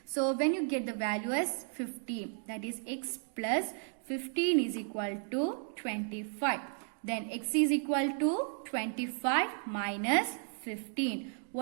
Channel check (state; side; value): silent; left; 55 dB below the other